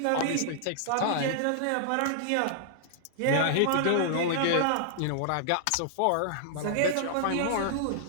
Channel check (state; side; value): different; both; correlation -0.01